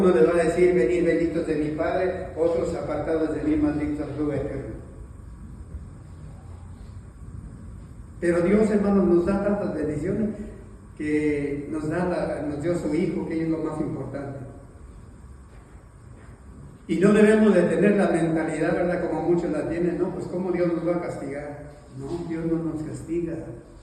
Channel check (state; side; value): identical; both; correlation 1.00